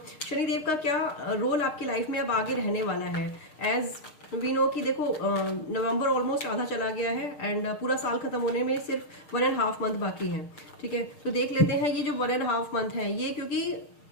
शनिदेव का क्या रोल आपकी लाइफ में अब आगे रहने वाला है। एज वी नो कि देखो नवंबर ऑलमोस्ट आधा चला गया है एंड पूरा साल खत्म होने में सिर्फ 1.5 मंथ बाकी है। ठीक है, तो देख लेते हैं ये जो 1.5 मंथ है ये, क्योंकि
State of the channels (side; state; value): right; late; 6.5 ms